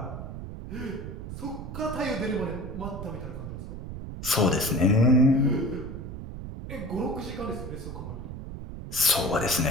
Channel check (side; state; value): right; noise; rumble, 8 dB below the sound